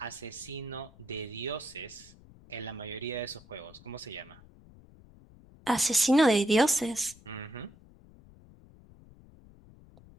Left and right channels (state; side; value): noise; left; rumble, 23 dB below the sound